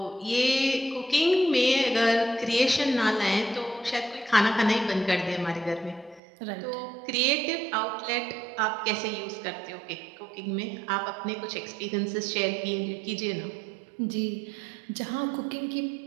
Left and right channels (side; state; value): left; drops out; at 6.2 s